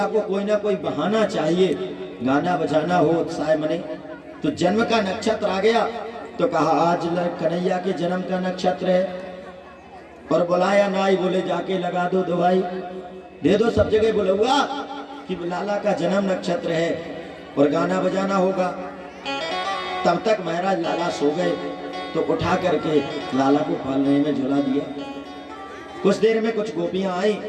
को कोई ना कोई बहाना चाहिए, गाना बजाना हो, उत्साह मने। तो जन्म का नक्षत्र आ गया तो कहा आज कन्हैया के जन्म का नक्षत्र है। और बुलाया नाई, बोले जाके लगा दो दवाई, दे दो, सब जगह बुलवा कि लाला का जन्म नक्षत्र है और गाना बजाना होगा। तब तक महाराज लाला सो गए तो उठा करके लाला को पालने में झुला दिया। कुछ देर में कुछ गोपियां आई,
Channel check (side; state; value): both; identical; correlation 1.00